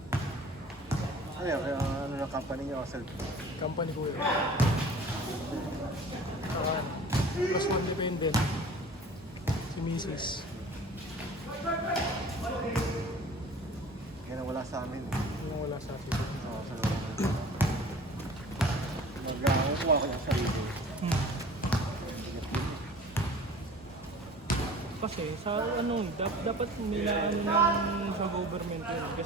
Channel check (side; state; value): both; normal; correlation 0.44